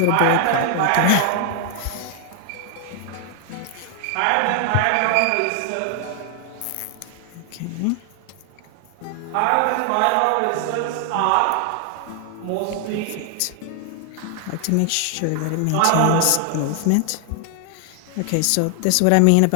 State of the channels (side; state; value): both; different; correlation 0.00